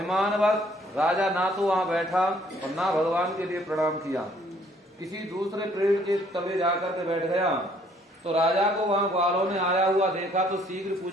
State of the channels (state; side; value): normal; both; correlation 0.62